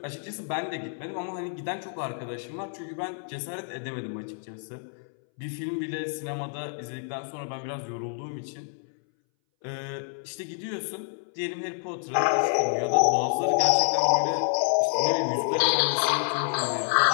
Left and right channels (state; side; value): silent; right; 59 dB below the other